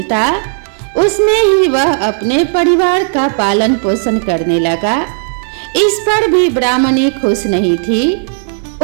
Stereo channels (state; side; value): silent; left; digital silence